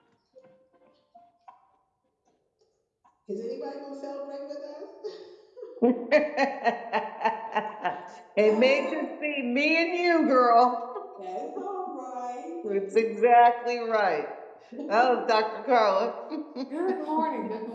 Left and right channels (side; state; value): both; identical; correlation 1.00